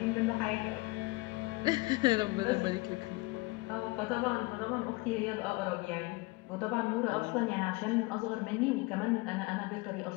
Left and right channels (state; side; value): quieter; right; 24.1 dB